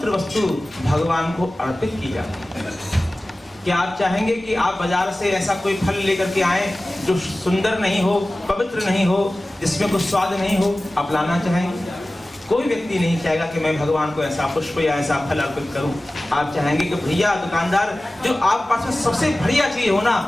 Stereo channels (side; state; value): both; normal; correlation 0.97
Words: वस्तु भगवान को अर्पित की जाती है। क्या आप चाहेंगे कि आप बाजार से ऐसा कोई फल लेकर के आए जो सुंदर नहीं हो, पवित्र नहीं हो, जिसमें कुछ स्वाद नहीं हो? आप लाना चाहेंगे? कोई व्यक्ति नहीं चाहेगा कि मैं भगवान को ऐसा पुष्प या ऐसा फल अर्पित करूं। आप चाहेंगे कि भैया दुकानदार, जो आप पास में सबसे बढ़िया चीज हो ना,